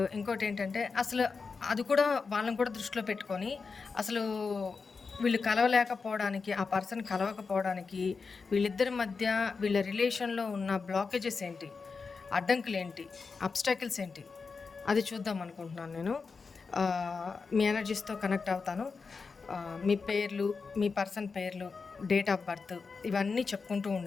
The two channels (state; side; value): quieter; right; 4.8 dB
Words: ఇంకోటి ఏంటంటే, అసలు అది కూడా వాళ్ళని కూడా దృష్టిలో పెట్టుకొని, అసలు వీళ్ళు కలవలేకపోవడానికి, ఆ పర్సన్ కలవకపోవడానికి వీళ్ళిద్దరి మధ్య వీళ్ళ రిలేషన్లో ఉన్న బ్లాకేజెస్ ఏంటి, అడ్డంకులు ఏంటి, అబ్స్టాకిల్స్ ఏంటి, అది చూద్దాం అనుకుంటున్నాను నేను. మీ ఎనర్జీస్తో కనెక్ట్ అవుతాను. మీ పేర్లు, మీ పర్సన్ పేర్లు, డేట్ ఆఫ్ బర్త్ ఇవన్నీ చెప్పుకుంటూ